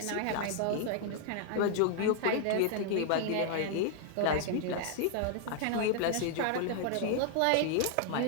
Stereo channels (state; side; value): different; both; correlation 0.00